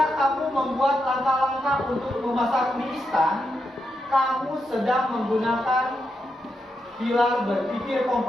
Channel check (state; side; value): normal; both; correlation 0.84